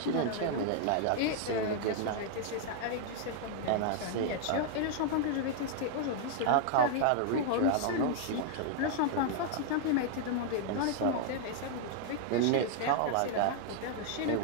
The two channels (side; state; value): both; different; correlation 0.00